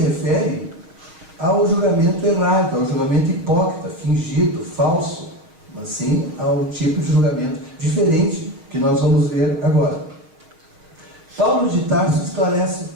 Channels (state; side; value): late; left; 6.4 ms